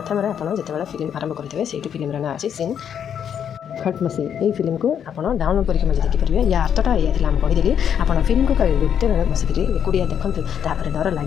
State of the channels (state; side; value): quieter; right; 8.6 dB